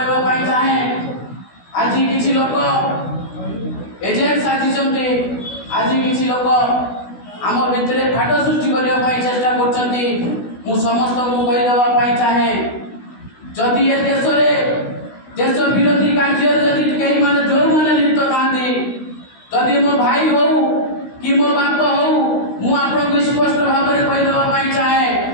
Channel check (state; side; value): late; right; 16 ms